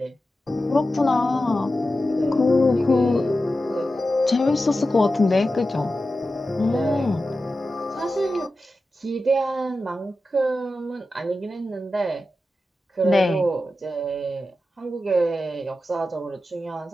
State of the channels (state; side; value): normal; both; correlation 0.92